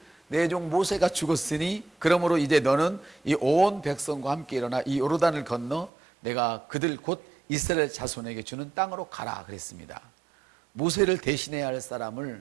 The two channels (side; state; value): left; drops out; at 5.9 s